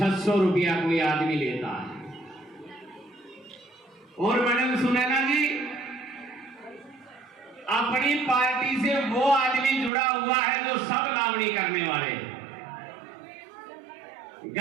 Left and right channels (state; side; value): drops out; left; at 9.9 s